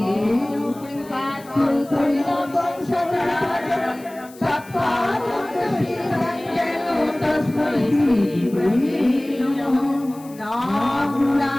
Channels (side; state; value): left; noise; hiss, 23 dB below the sound